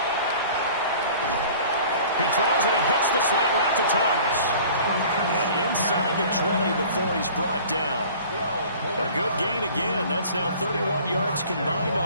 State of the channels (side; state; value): both; inverted; correlation -0.46